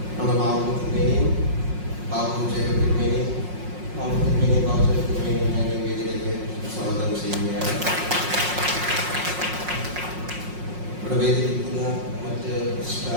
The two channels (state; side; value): late; left; 5.5 ms